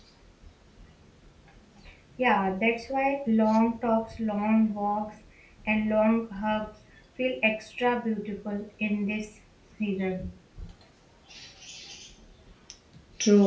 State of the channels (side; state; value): both; identical; correlation 1.00